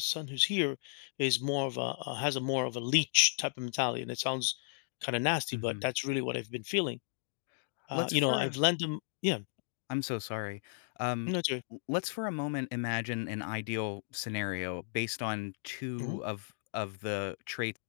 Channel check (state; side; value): silent; right; digital silence